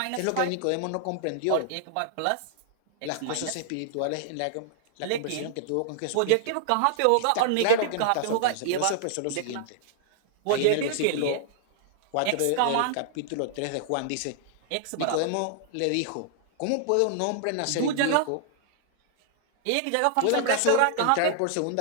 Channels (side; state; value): both; different; correlation -0.01